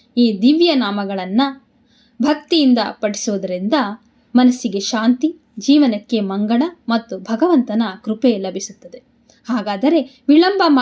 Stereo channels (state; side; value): identical; both; correlation 1.00